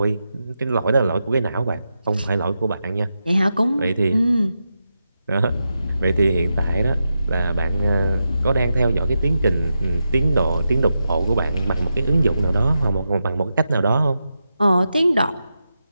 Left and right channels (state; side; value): inverted; both; correlation -0.88